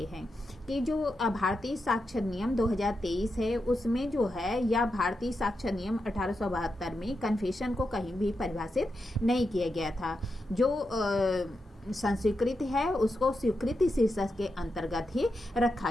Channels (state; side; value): normal; both; correlation 0.87